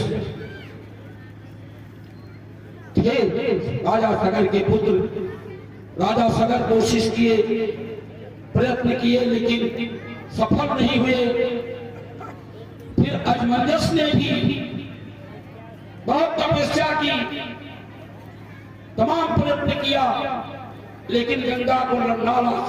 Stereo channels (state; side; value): identical; both; correlation 1.00